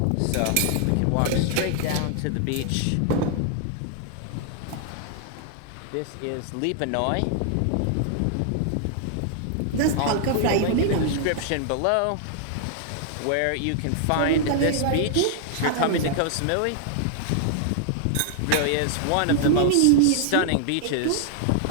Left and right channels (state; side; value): different; both; correlation -0.01